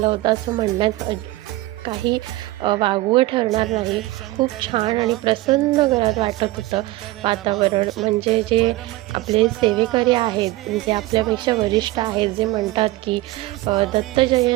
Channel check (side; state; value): left; quieter; 18.4 dB